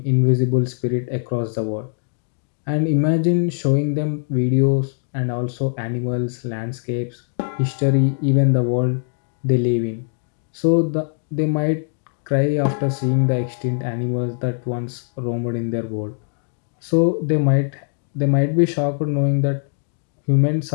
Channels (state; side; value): silent; right; digital silence